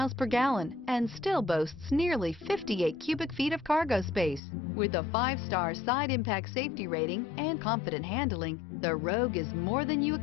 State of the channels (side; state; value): right; drops out; at 4.4 s